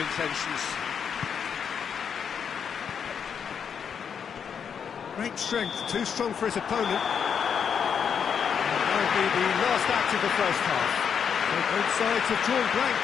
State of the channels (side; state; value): right; quieter; 7.2 dB